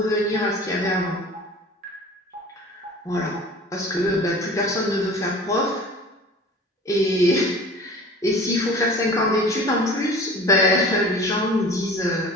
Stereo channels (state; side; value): normal; both; correlation 0.42